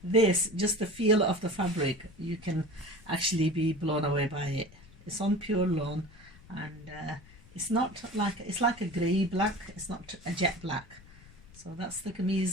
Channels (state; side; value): noise; left; rumble, 22 dB below the sound